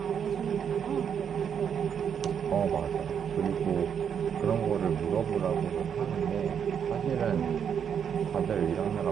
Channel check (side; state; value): left; quieter; 7.8 dB